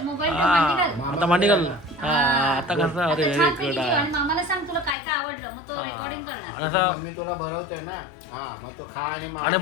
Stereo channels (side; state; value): right; drops out; at 5.0 s